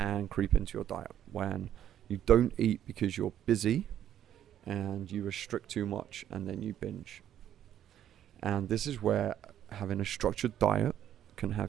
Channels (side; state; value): left; quieter; 10.7 dB